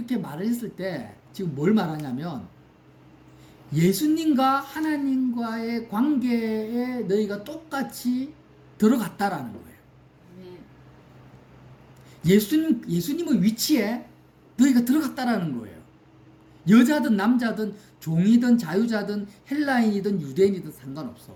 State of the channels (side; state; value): both; identical; correlation 1.00